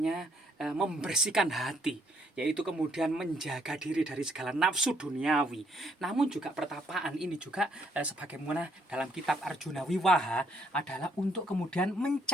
membersihkan hati, yaitu kemudian menjaga diri dari segala nafsu duniawi. Namun juga pertapaan ini juga sebagaimana dalam kitab Arjuna Wiwaha adalah untuk kemudian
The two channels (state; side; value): normal; both; correlation 0.70